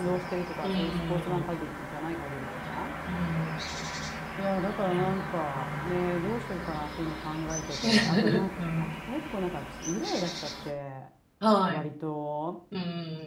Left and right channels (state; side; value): identical; both; correlation 1.00